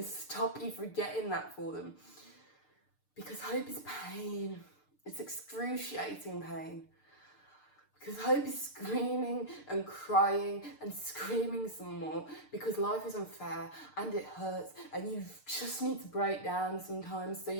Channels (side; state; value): right; late; 6.7 ms